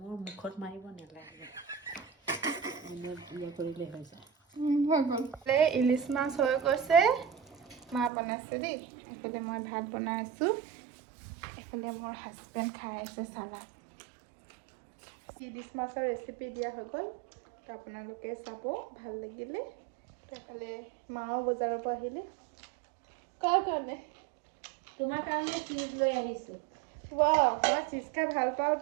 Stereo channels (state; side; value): drops out; left; at 8.1 s